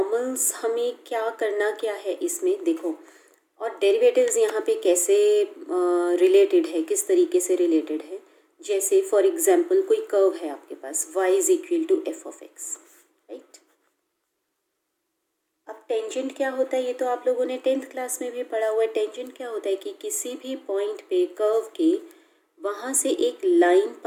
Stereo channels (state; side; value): identical; both; correlation 1.00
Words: हमें क्या है इसमें देखो, और डेरिवेटिव्स यहाँ पे कैसे रिलेटेड है, किस तरीके से रिलेटेड है। जैसे फॉर एग्जांपल कोई कर्व है आपके पास y is equal to F of X, right. अब टेंजेंट क्या होता है ये तो आप लोगों ने 10th क्लास में भी पढ़ा हुआ है। टेंजेंट क्या होता है कि किसी भी पॉइंट पे कर्व के वहाँ से एक लाइन